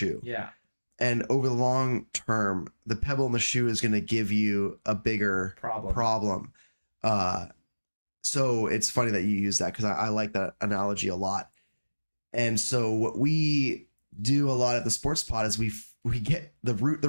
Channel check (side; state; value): both; inverted; correlation -1.00